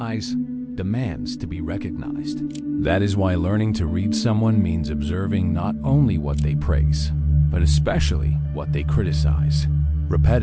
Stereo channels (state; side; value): identical; both; correlation 1.00